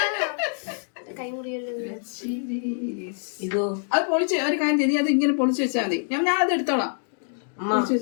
ഇതോ അത് പൊളിച്ച് ഒരു കാര്യം ചെയ്ത് അത് ഇങ്ങനെ പൊളിച്ച് വെച്ചാൽ മതി. ഞാൻ അത് എടുത്തോളാം.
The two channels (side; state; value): right; silent; 62 dB below the other